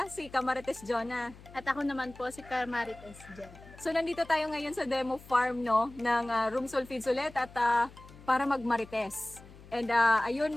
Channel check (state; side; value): noise; left; hum, 20 dB below the sound